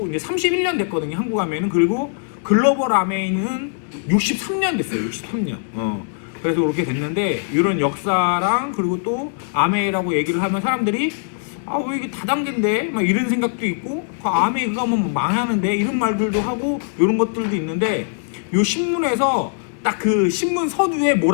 이제 31년 됐거든요. 한국 아메이는. 그리고 글로벌 아메이는 63년 됐어요. 63년. 그래서 그렇게 됐는데, 이런 역사랑 그리고 또 아메이라고 얘기를 하면 사람들이 왜 이게 다단계인데? 막 이런 생각도 있고, 아메이 그거 하면 망하는데? 이런 말들도 하고, 이런 것들도 있는데, 요 신문에서 딱 그 신문 서두에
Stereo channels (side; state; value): right; silent; digital silence